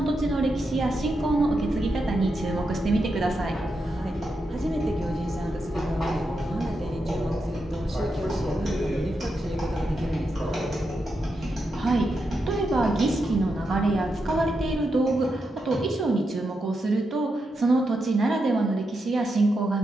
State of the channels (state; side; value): normal; both; correlation 0.85